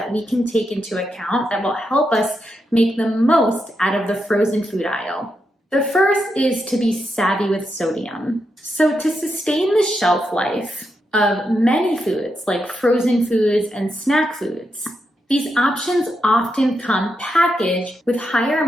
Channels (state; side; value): normal; both; correlation 0.84